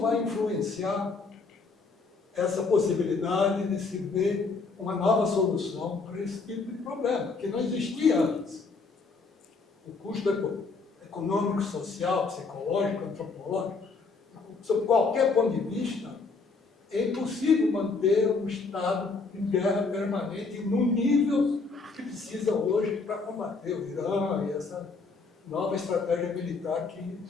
influenciar essa possibilidade de se ver uma nova solução para esse tipo de problema, que não existia antes? O custo econômico, social, psicológico, antropológico, sob qualquer ponto de vista, é impossível manter um Estado em guerra permanente no nível que precisa hoje para combater o Irã e essa nova estratégia militar que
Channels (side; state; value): right; quieter; 4.2 dB